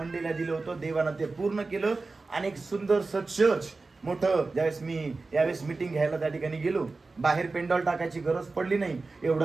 दिलं होतं देवानं ते पूर्ण केलं. आणि एक सुंदरसं चर्च मोठं, यावेळेस मीटिंग घ्यायला त्या ठिकाणी गेलो, बाहेर पेंडॉल टाकायची गरज पडली नाही,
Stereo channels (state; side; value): quieter; left; 3.7 dB